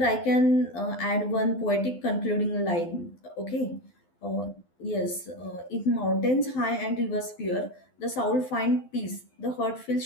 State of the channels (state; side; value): late; right; 12 ms